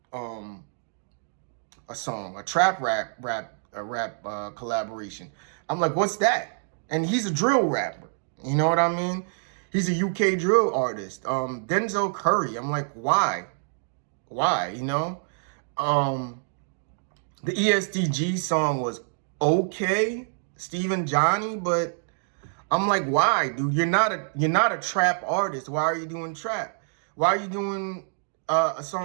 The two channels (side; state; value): left; silent; digital silence